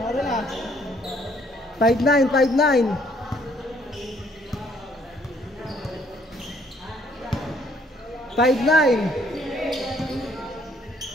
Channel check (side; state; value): both; normal; correlation 0.64